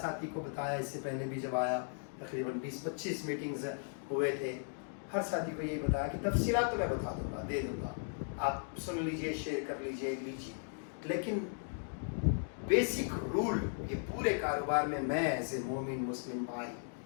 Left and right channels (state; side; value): silent; right; digital silence